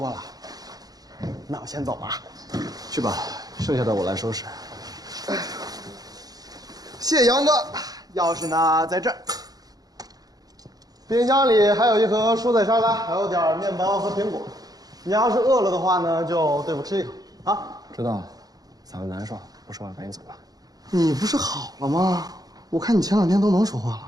了。那我先走了。去吧，剩下的我来收拾。谢谢杨哥，钥匙呢在这儿。冰箱里还有一盒蔬菜沙拉，还有点面包和苹果。你要是饿了的话呢，就对付吃一口啊。知道了，嗓子难受，不说话赶紧走吧。你不是好了吗？我看你前2天都能说话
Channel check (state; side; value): late; left; 0.18 ms